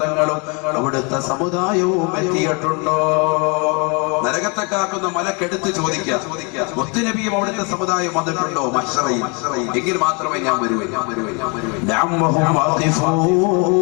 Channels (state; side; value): quieter; right; 32.6 dB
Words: തങ്ങളും അവിടുത്തെ സമുദായവും എത്തിയിട്ടുണ്ടോ? നരകത്തെ കാക്കുന്ന മലക്കെടുത്ത് ചോദിക്കുക, മുത്തുനബിയും അവിടുത്തെ സമുദായം വന്നിട്ടുണ്ടോ മഹ്ശറയിൽ? എങ്കിൽ മാത്രമേ ഞാൻ വരുവേ.